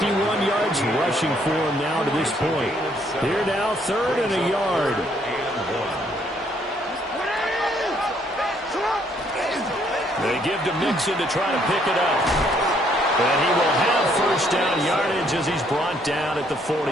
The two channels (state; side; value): normal; both; correlation 0.68